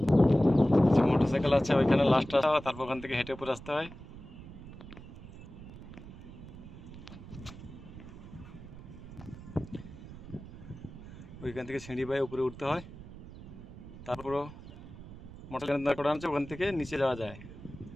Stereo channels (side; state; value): right; noise; rumble, 15 dB below the sound